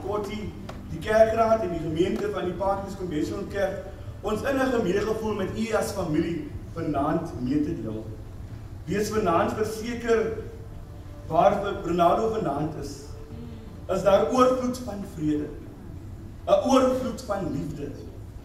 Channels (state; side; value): identical; both; correlation 1.00